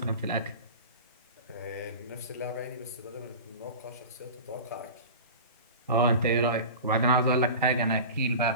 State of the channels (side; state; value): both; inverted; correlation -0.33